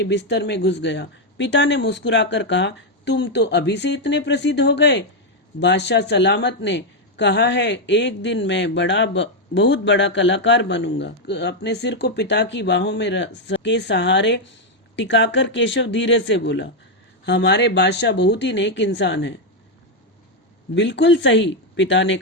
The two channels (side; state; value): both; normal; correlation 0.02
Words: बिस्तर में घुस गया। पिता ने मुस्कुराकर कहा, तुम तो अभी से इतने प्रसिद्ध हो गए। बादशाह सलामत ने कहा है, एक दिन मैं बहुत बड़ा कलाकार बनूंगा। अपने सिर को पिता की बाहों में के सहारे टिकाकर केशव धीरे से बोला, हमारे बादशाह बहुत ही नेक इंसान है। बिल्कुल सही, पिता ने